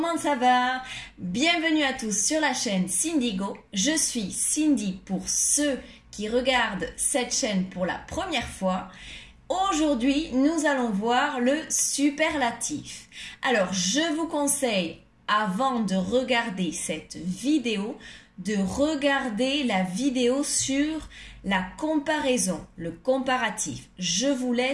comment ça va? Bienvenue à tous sur la chaîne Cindygo. Je suis Cindy pour ceux qui regardent cette chaîne pour la première fois. Aujourd'hui, nous allons voir le superlatif. Alors, je vous conseille, avant de regarder cette vidéo, de regarder la vidéo sur la comparaison, le comparatif. Je vous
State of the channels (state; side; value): identical; both; correlation 1.00